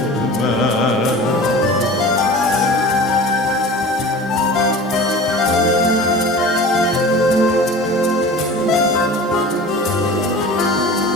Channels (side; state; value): both; normal; correlation 0.38